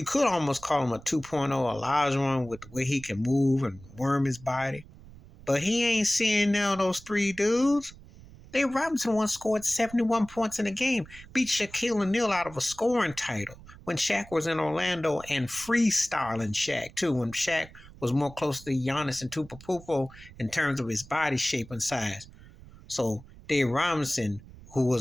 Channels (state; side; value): noise; right; rumble, 20 dB below the sound